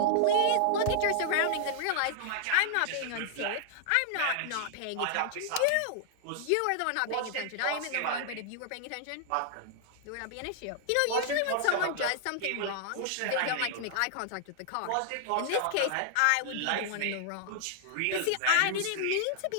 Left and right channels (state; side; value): different; both; correlation -0.01